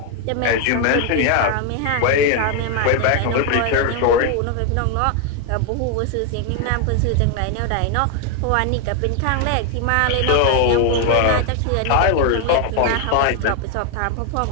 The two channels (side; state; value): both; different; correlation 0.00